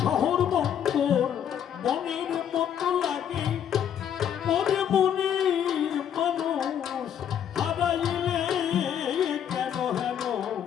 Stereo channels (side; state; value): right; quieter; 9.2 dB